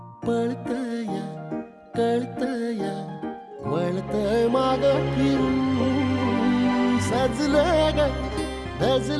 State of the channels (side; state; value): both; identical; correlation 1.00